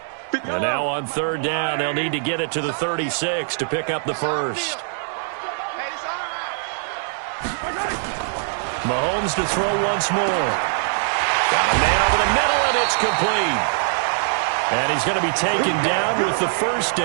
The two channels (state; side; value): silent; left; digital silence